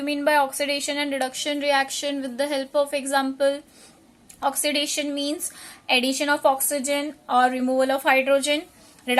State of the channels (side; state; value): both; identical; correlation 1.00